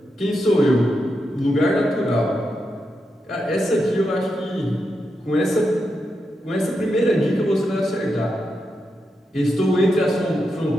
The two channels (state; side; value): normal; both; correlation 0.86